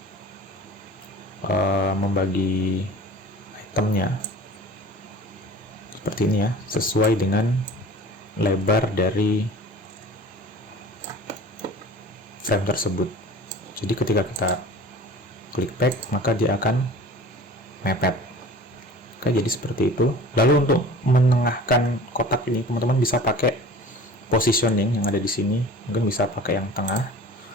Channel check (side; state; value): both; normal; correlation 0.43